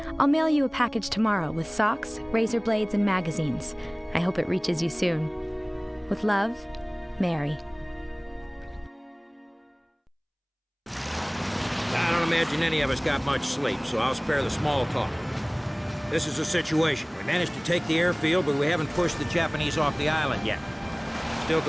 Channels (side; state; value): both; identical; correlation 1.00